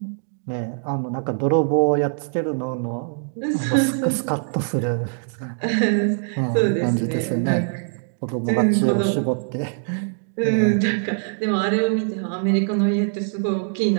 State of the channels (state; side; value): silent; left; 64 dB below the other